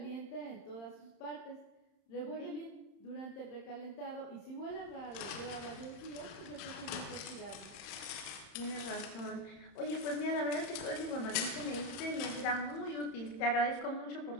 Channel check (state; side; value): late; right; 31 ms